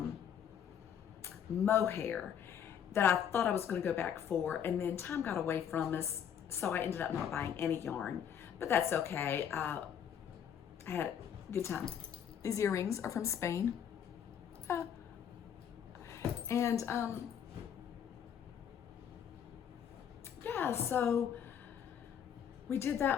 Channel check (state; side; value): quieter; right; 8.6 dB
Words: mohair that I thought I was going to go back for, and then time got away from us, so I ended up not buying any yarn, but that's okay. I had a good time. These earrings are from Spain. And yeah, so we did